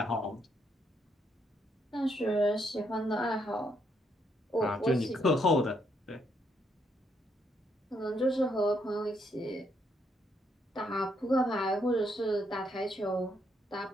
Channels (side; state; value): both; normal; correlation 0.74